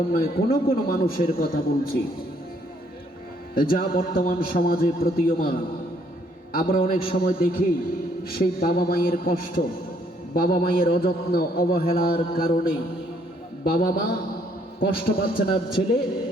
নয়, কোনো কোনো মানুষের কথা বলছি যা বর্তমান সমাজে প্রতীয়মান। আমরা অনেক সময় দেখি সেই বাবা মায়ের কষ্ট, বাবা মায়ের অযত্ন অবহেলার কারণে বাবা মা কষ্ট পাচ্ছেন। আর ছেলে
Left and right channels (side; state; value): both; normal; correlation 0.67